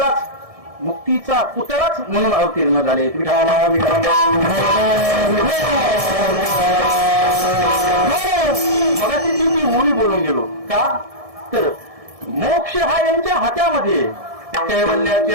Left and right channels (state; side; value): late; left; 1.7 ms